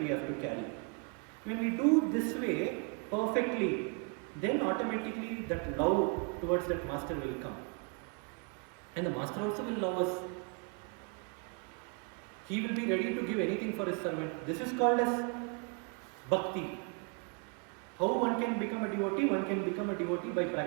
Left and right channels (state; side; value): quieter; left; 35.7 dB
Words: have to carry. When we do this way perfectly, then automatically that love towards that master will come. And the master also will love us. He will be ready to give anything for his servant. This is called as bhakti. How one can become a devotee? One can become a devotee by